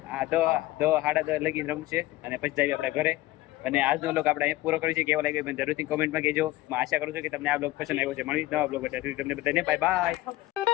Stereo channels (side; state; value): right; quieter; 17.2 dB